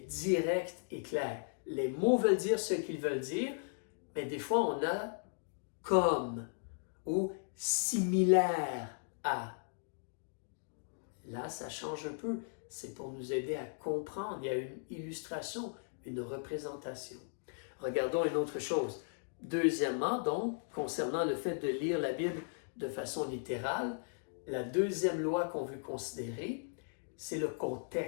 directe et claire. Les mots veulent dire ce qu'ils veulent dire, mais des fois, on a comme ou similaire à. Là, ça change un peu. C'est pour nous aider à comprendre. Il y a une illustration, une représentation. Regardons une autre chose. Deuxièmement, donc, concernant le fait de lire la Bible de façon littérale, la deuxième loi qu'on veut considérer, c'est le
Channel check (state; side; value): silent; right; digital silence